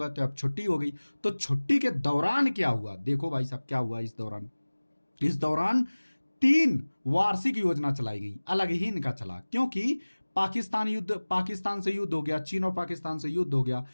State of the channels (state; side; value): inverted; both; correlation -1.00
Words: तो अब छुट्टी हो गई। तो छुट्टी के दौरान क्या हुआ? देखो भाई साहब क्या हुआ इस दौरान 3 वार्षिक योजना चलाई गई, अलग ही इनका चला, क्योंकि पाकिस्तान से युद्ध हो गया, चीन और पाकिस्तान से युद्ध हो गया,